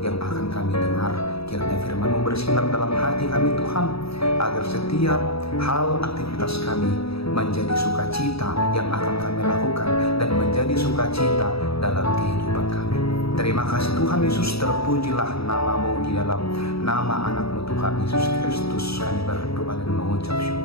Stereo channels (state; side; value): late; right; 0.77 ms